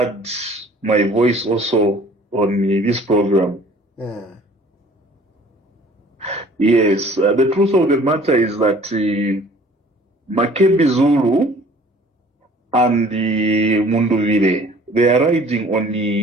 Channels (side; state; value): both; normal; correlation 0.52